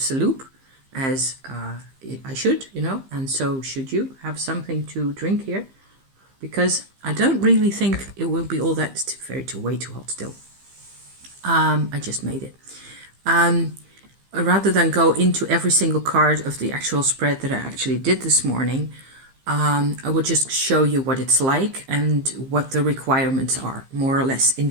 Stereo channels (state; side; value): late; left; 15 ms